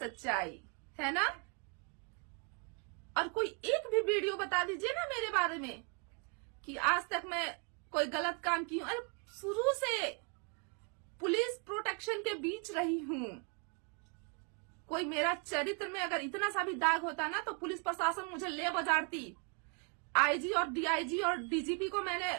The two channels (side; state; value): left; quieter; 36.3 dB